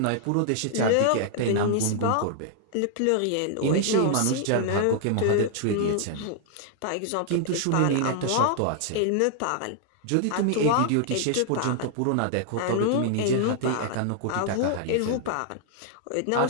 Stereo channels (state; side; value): different; both; correlation -0.01